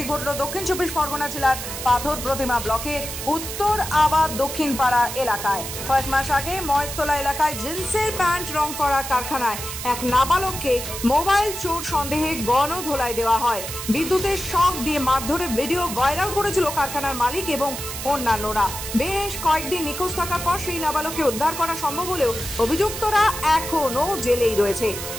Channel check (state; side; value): noise; right; hiss, 7 dB below the sound